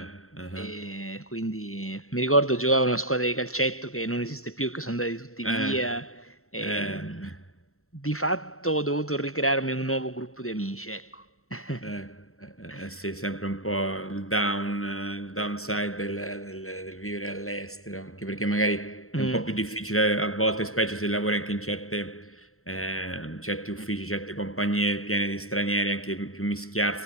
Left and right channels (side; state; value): right; late; 0.63 ms